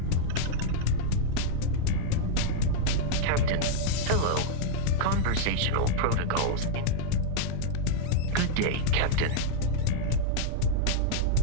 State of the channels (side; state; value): both; different; correlation -0.01